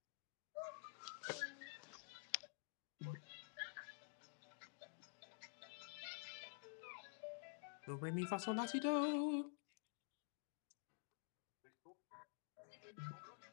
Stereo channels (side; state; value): right; silent; digital silence